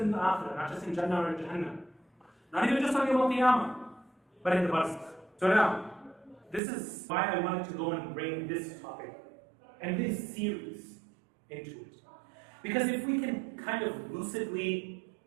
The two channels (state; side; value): drops out; left; at 6.6 s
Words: the Akhirah, not just in Jannah or Jahannam. Not even just on Yawm al-Qiyamah, but in the Barzakh. So now, this is why I wanted to go and bring this topic and this series into it. Because if we can kind of lucidly